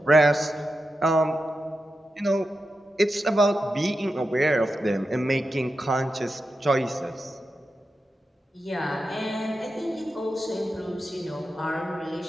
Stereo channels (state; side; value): normal; both; correlation 0.90